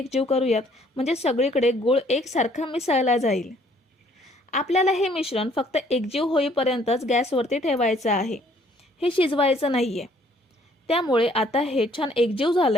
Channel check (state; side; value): normal; both; correlation 0.62